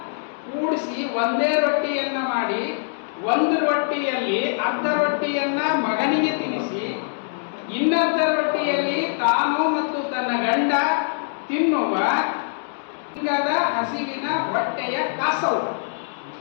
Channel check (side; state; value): right; silent; digital silence